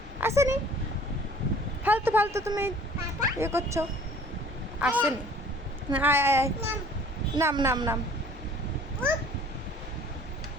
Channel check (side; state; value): both; normal; correlation 0.51